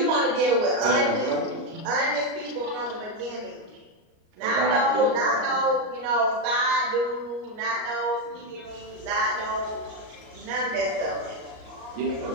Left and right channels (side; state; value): left; late; 38 ms